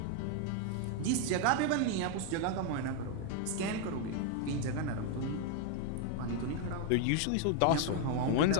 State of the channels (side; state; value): both; different; correlation 0.01